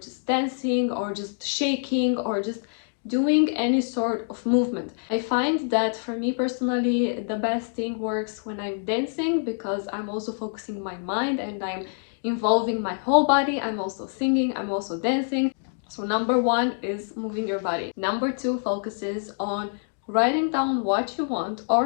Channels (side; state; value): right; silent; 61 dB below the other